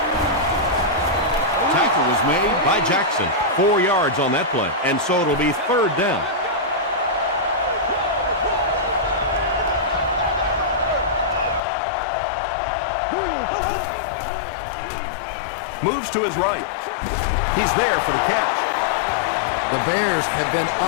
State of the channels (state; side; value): drops out; right; at 11.6 s